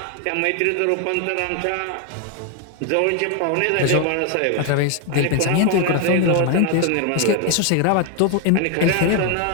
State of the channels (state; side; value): different; both; correlation 0.01